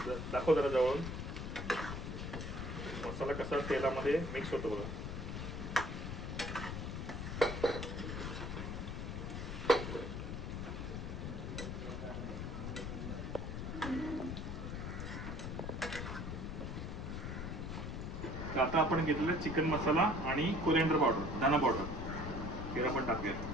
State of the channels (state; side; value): noise; left; rumble, 5 dB below the sound